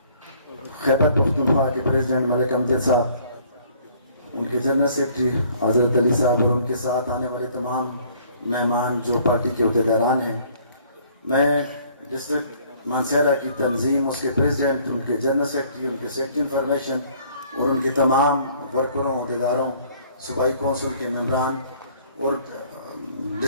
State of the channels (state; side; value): inverted; both; correlation -0.58